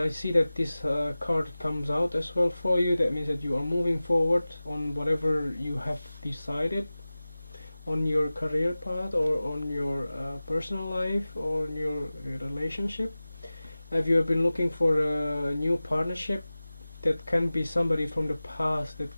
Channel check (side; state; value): both; inverted; correlation -0.97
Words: I see that this card comes out as well for you. That means that you are moving forward on whatever you have decided on your career path, or on your personal life, or on your relationship. If you have been looking for a new partnership, that can be somebody from the past that